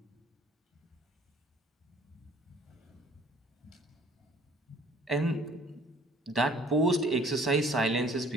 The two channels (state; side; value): normal; both; correlation 0.54